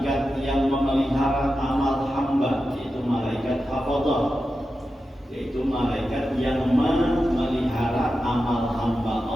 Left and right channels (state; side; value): normal; both; correlation 0.91